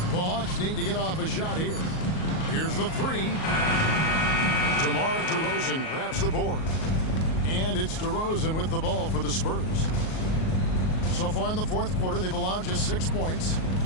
The Hawks need to get off a shot here. Here's the 3. DeMar DeRozan grabs the board. And it's DeRozan with the ball for the Spurs. So far in the 4th quarter, they've allowed just 6 points.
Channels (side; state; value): right; late; 38 ms